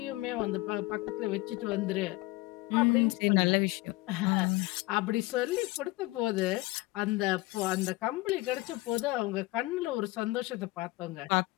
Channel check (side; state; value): right; quieter; 20.9 dB